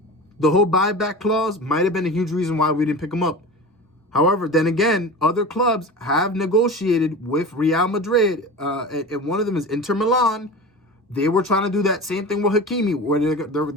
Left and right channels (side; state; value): both; normal; correlation 0.32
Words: the whole buyback clause might have been a huge reason why we didn't pick him up. However, then again, other clubs have negotiated with Real Madrid. And one of them is Inter Milan. They were trying to do that same thing with Hakimi, where